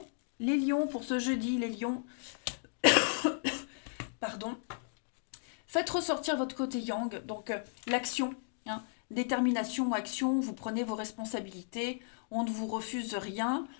pour ce jeudi, les lions, pardon. Faites ressortir votre côté yang, donc l'action, hein, détermination, action, vous prenez vos responsabilités, on ne vous refuse rien,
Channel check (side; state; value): right; silent; digital silence